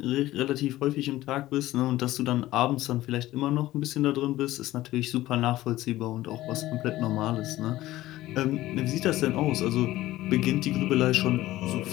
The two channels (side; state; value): right; quieter; 16.0 dB